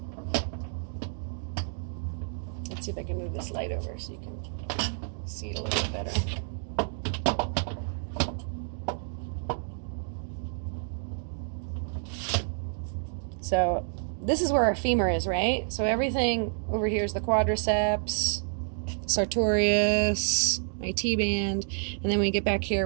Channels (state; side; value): silent; left; digital silence